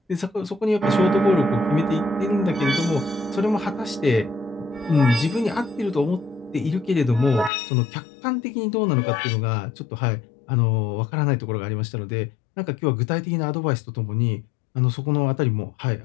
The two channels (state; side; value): drops out; right; at 7.5 s